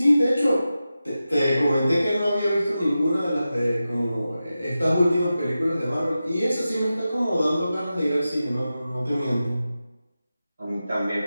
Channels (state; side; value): inverted; both; correlation -0.93